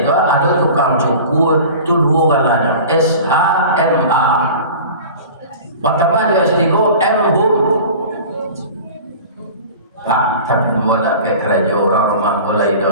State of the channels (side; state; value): both; inverted; correlation -0.38